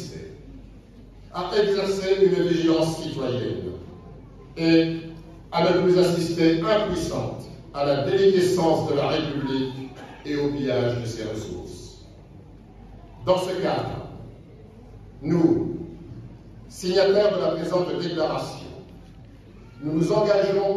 à exercer une vigilance citoyenne et à ne plus assister impuissante à la déliquescence de la République et au pillage de ses ressources. Dans ce cadre, nous, signataires de la présente déclaration, nous nous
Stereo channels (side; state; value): both; identical; correlation 1.00